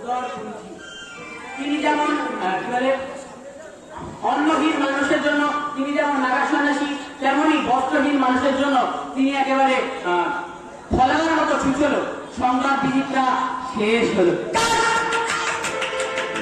তিনি যেমন কি বলে অন্নহীন মানুষের জন্য তিনি যেমন নাগা সন্ন্যাসী, তেমনি বস্ত্রহীন মানুষের জন্য তিনি একেবারে ফলানোর মতো ছুটল। সংবাদ বিজিতটা শেষ হলো।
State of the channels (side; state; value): both; identical; correlation 1.00